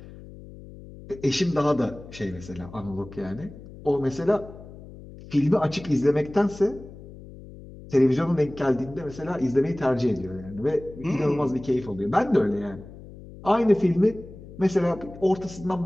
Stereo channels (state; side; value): noise; left; hum, 17 dB below the sound